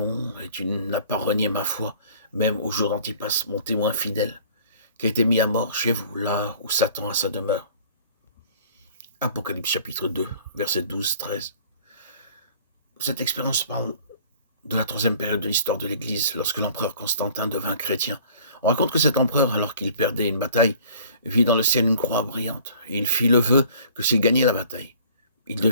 et tu n'as pas renié ma foi, même au jour d'Antipas, mon témoin fidèle, qui a été mis à mort chez vous, là où Satan a sa demeure. Apocalypse chapitre 2, versets 12-13. Cette expérience parle de la troisième période de l'histoire de l'Église, lorsque l'empereur Constantin devint chrétien. On raconte que cet empereur, alors qu'il perdait une bataille, vit dans le ciel une croix brillante, et il fit le vœu que s'il gagnait la bataille, il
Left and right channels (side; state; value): both; inverted; correlation -0.51